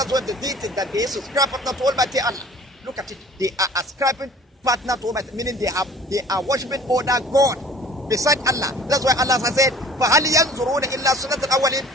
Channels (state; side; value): normal; both; correlation 0.48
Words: where the deity that they subscribe partner to Almighty Allah. Look at it. They are ascribing partner to Almighty, meaning they are worshiping other God beside Allah. That's why Allah has said, فَهَلْ يَنْظُرُونَ إِلَّا سُنَّةَ